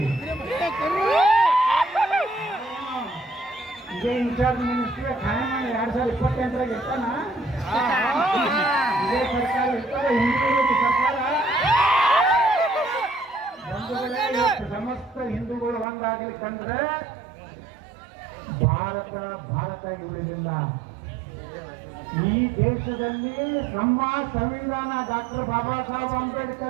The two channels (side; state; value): left; drops out; at 15.9 s